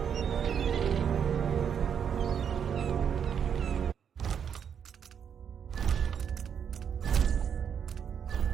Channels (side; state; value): left; quieter; 7.8 dB